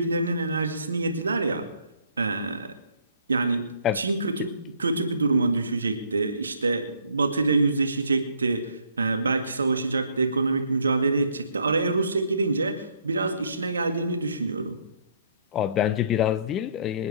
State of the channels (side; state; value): both; inverted; correlation -0.64